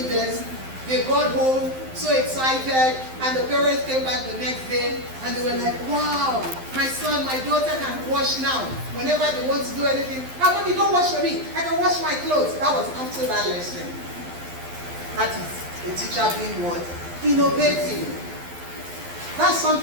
them. They got home so excited, and the parents came back the next day and they were like, wow, my son, my daughter can wash now. Whenever they want to do anything, mommy, don't wash for me. I can wash my clothes. That was after that lesson. That is a teacher being what? Innovative. That's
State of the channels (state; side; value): late; left; 12 ms